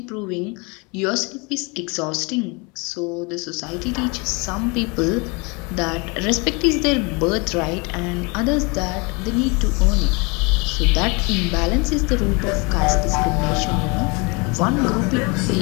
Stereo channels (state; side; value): quieter; right; 29.3 dB